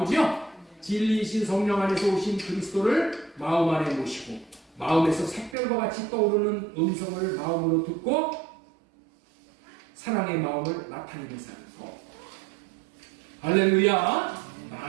진리이신 성령 안에서 오신 그리스도를 마음 안에 모시고 마음에서 샛별과 같이 떠오르는 음성을 마음으로 듣고 사랑의 마음을 나타내는 사람. 할렐루야.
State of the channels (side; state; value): left; drops out; at 5.6 s